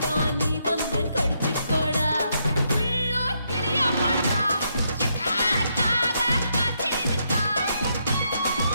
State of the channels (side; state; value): both; inverted; correlation -0.78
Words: நீ வந்து கடிச்சுக்கோடா உள்ளூர் கிளியா பாட்டா காக காத்திருக்கா